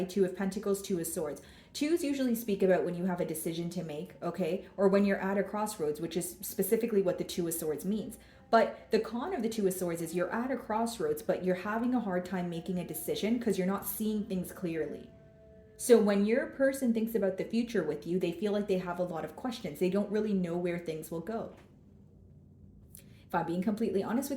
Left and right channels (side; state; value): both; identical; correlation 1.00